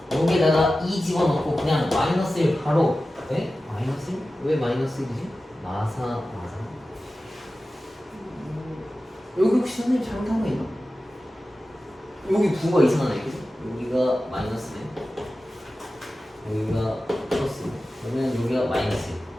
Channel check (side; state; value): both; normal; correlation 0.94